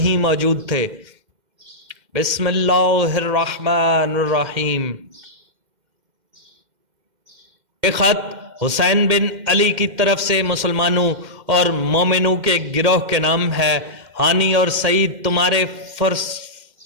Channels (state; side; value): late; left; 2.1 ms